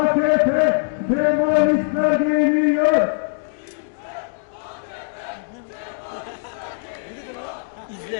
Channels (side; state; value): right; silent; digital silence